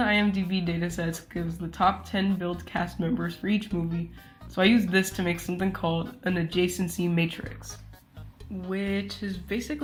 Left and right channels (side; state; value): both; identical; correlation 1.00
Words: IMDb datasets gives the top 10 billed cast members for each movie, so I used this to make something called an adjacency matrix, which is